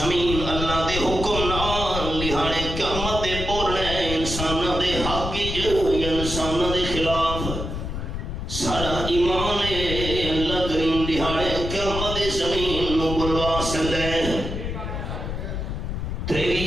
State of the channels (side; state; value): left; noise; rumble, 5 dB below the sound